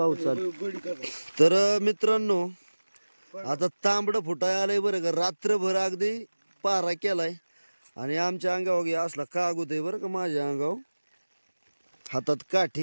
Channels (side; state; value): both; inverted; correlation -1.00